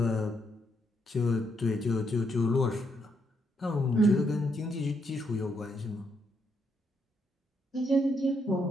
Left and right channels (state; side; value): normal; both; correlation 0.76